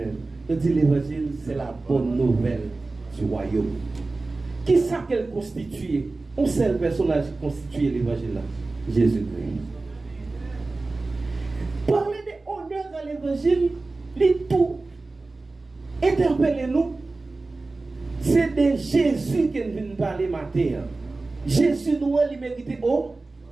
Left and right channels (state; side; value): quieter; left; 3.4 dB